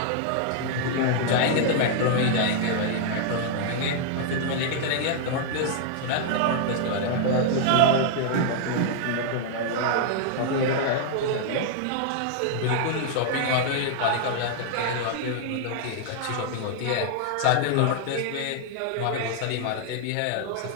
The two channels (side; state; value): both; different; correlation -0.01